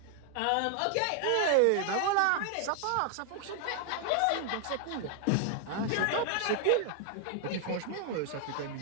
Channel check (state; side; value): different; both; correlation 0.00